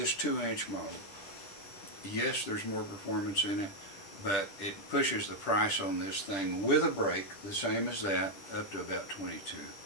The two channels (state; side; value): late; right; 10 ms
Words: 2-inch model, yes, there's more performance in it, but it pushes the price on this thing with a brake, the same as that, up to about $22.